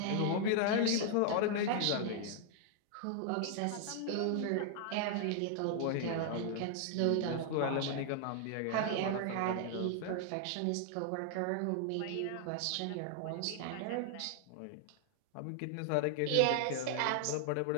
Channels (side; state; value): both; different; correlation 0.00